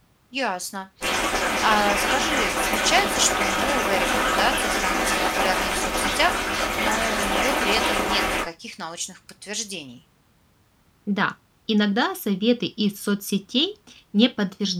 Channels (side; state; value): both; identical; correlation 1.00